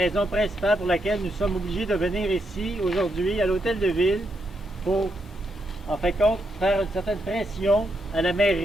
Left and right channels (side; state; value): both; normal; correlation 0.80